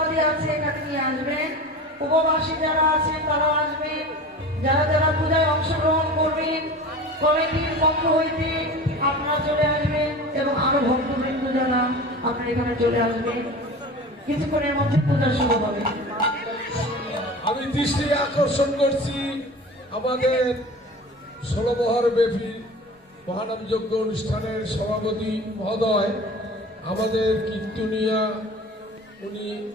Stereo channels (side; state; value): both; normal; correlation 0.36